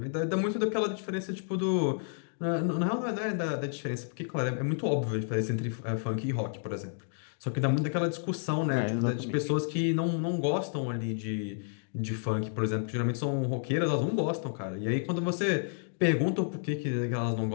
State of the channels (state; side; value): silent; right; digital silence